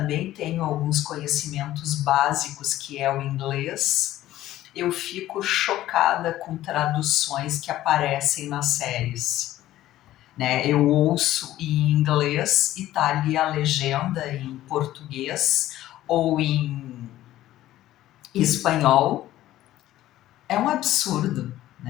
tenho alguns conhecimentos básicos, que é o inglês. Eu fico chocada com traduções que aparecem nas séries, né? Eu ouço em inglês e tá ali a legenda em português ou em espanhol. É um absurdo,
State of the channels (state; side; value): quieter; right; 14.3 dB